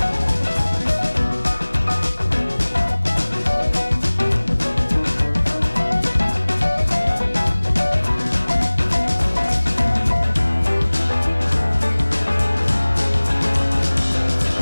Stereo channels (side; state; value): both; inverted; correlation -1.00